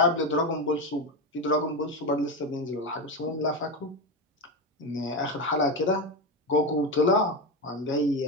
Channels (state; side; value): normal; both; correlation 0.15